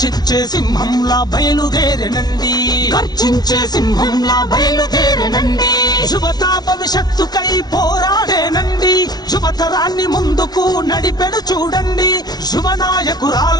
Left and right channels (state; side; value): late; right; 0.19 ms